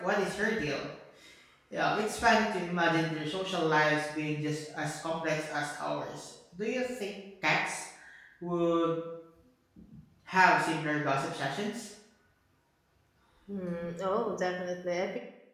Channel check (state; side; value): identical; both; correlation 1.00